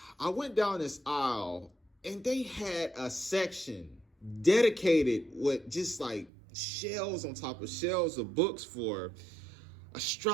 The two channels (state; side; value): drops out; left; at 6.3 s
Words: I went down this aisle and they had a section dedicated with just like shelves on top of shelves of books for